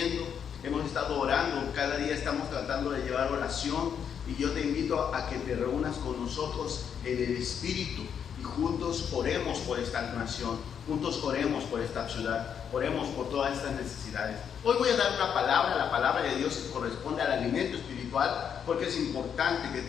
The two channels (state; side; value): quieter; right; 7.9 dB